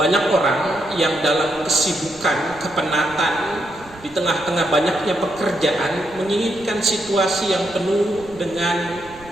orang yang dalam kesibukan, kepenatan, di tengah-tengah banyaknya pekerjaan, menginginkan situasi yang penuh dengan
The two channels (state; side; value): noise; right; rumble, 21 dB below the sound